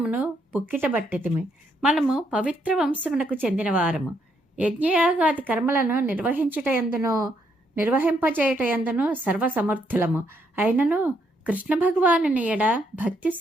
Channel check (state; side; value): normal; both; correlation 0.74